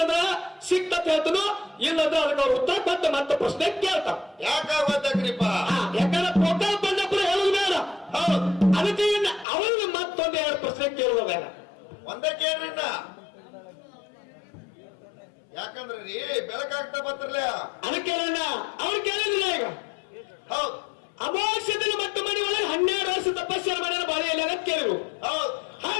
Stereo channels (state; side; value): drops out; right; at 9.5 s